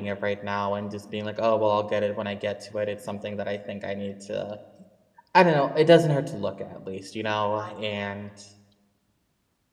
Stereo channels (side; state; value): both; identical; correlation 1.00